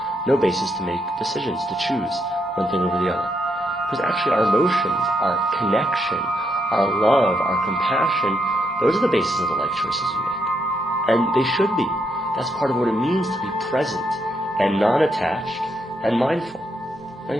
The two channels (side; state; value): both; normal; correlation 0.78